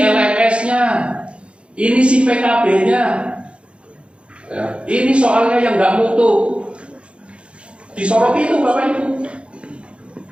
LMS-nya, ini si PKB-nya, ya, ini soalnya yang nggak mutu. Disoroti itu Bapak Ibu.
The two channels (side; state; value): left; late; 0.058 ms